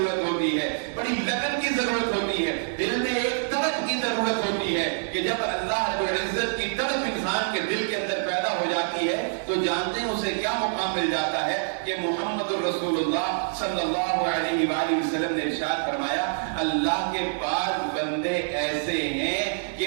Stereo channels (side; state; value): left; silent; digital silence